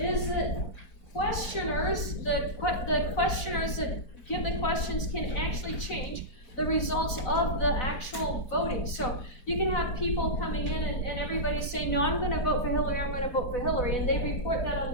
that questioners, the questioners that give the questions can actually change the results of the actual voting. So you can have people coming in and everybody say, no, I'm going to vote for Hillary, I'm going to vote for Hillary, and they report that on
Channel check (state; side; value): late; right; 4.0 ms